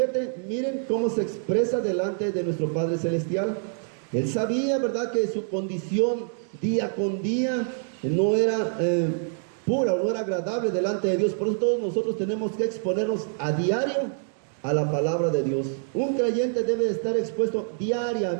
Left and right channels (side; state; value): left; silent; 59 dB below the other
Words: miren cómo se expresa delante de nuestro Padre Celestial. Él sabía, ¿verdad?, que su condición día con día no era pura o no era agradable delante de Dios. Por eso todos nosotros tenemos que exponernos a diario a la palabra de Dios. Un creyente debe estar expuesto